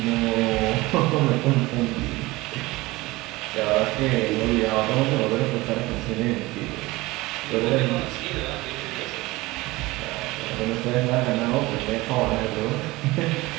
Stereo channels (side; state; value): left; quieter; 20.6 dB